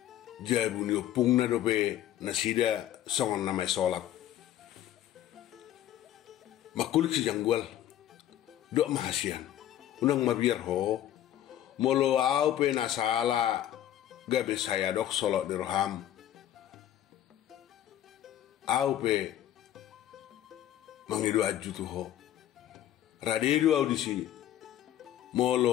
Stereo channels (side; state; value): right; quieter; 12.1 dB